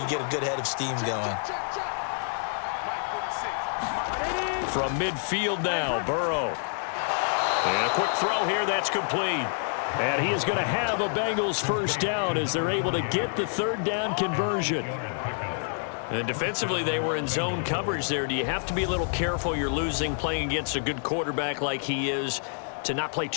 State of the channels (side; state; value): right; silent; digital silence